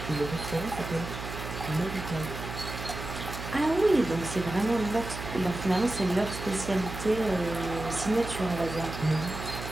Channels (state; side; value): noise; right; hum, 8 dB below the sound